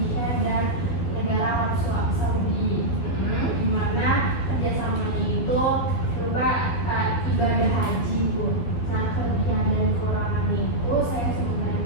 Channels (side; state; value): right; late; 12 ms